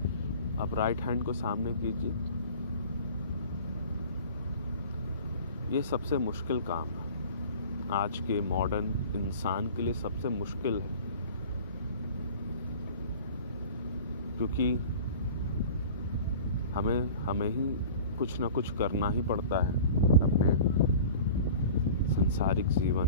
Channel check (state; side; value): inverted; both; correlation -0.41